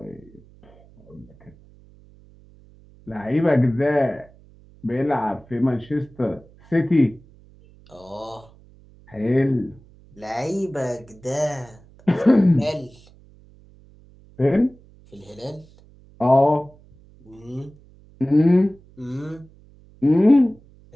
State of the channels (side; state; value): right; noise; hum, 26 dB below the sound